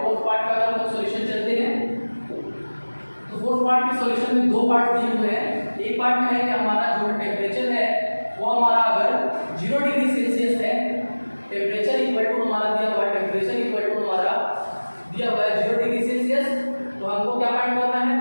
फोर्थ पार्ट का अगर हम सॉल्यूशन चलते हैं तो फोर्थ पार्ट के सॉल्यूशन में दो पार्ट दिए हुए हैं। एक पार्ट में है कि हमारा जो टेंपरेचर है वो हमारा अगर 0 डिग्री सेल्सियस है, टेंपरेचर इक्वल टू हमारा दिया हुआ है, टेंपरेचर इक्वल टू हमारा दिया हुआ है 0 डिग्री सेल्सियस, तो हमको क्या फाइंड करना है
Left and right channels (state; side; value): inverted; both; correlation -1.00